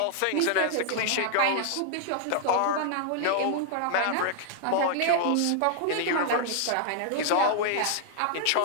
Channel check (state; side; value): different; both; correlation 0.00